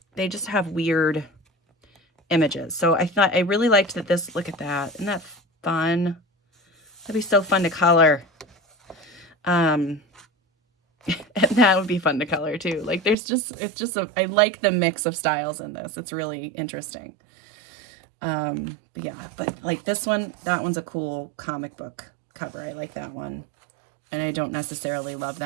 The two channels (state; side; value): drops out; left; at 13.2 s